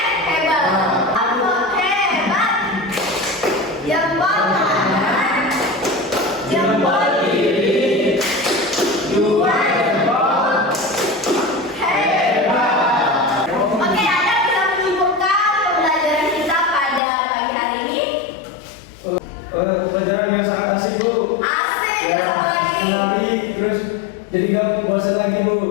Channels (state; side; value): drops out; right; at 17.0 s